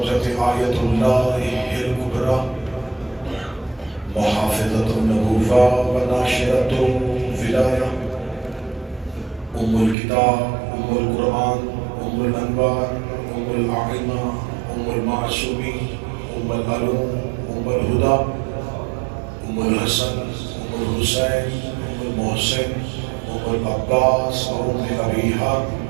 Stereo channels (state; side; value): drops out; left; at 10.0 s